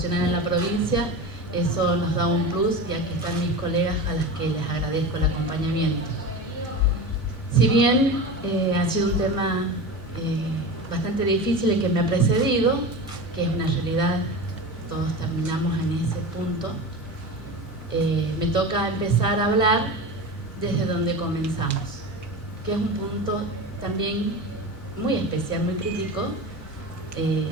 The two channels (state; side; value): normal; both; correlation 0.28